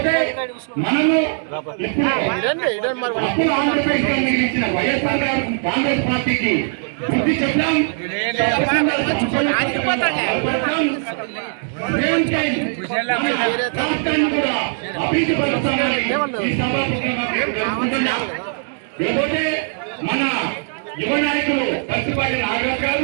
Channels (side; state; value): left; silent; 66 dB below the other